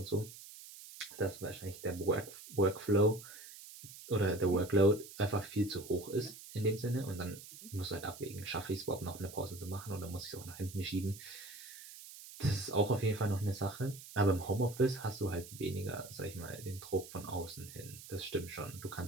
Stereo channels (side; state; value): right; noise; hiss, 15 dB below the sound